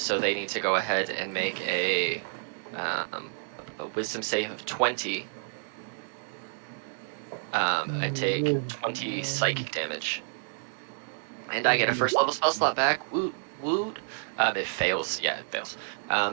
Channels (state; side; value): silent; left; 58 dB below the other